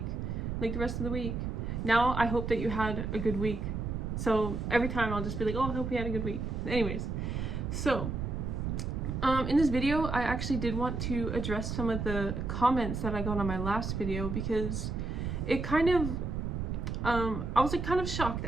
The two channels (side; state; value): right; noise; rumble, 3 dB below the sound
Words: like the rest of the week. Now I hope that you had a good week. So every time I'll just be like, oh, I hope you had a good week. Anyways, so in this video, I actually did want to address some of the comments that I got on my last video because it kind of, I was like kind of shocked